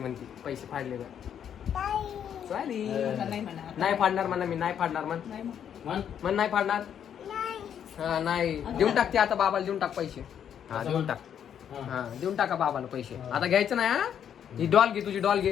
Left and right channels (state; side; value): quieter; right; 8.9 dB